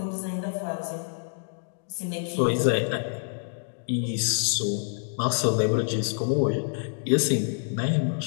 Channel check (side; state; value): right; silent; digital silence